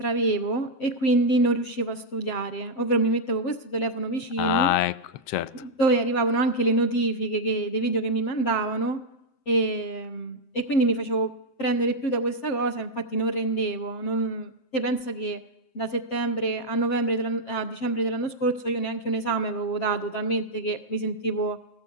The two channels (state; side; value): late; right; 7.7 ms